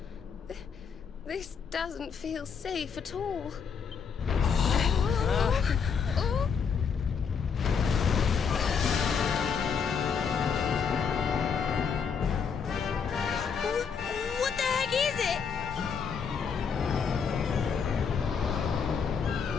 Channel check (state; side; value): quieter; right; 6.4 dB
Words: This doesn't feel safe at all. Oh. What the heck is it?